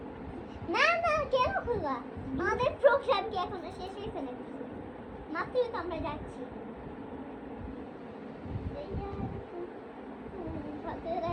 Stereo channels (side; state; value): both; identical; correlation 1.00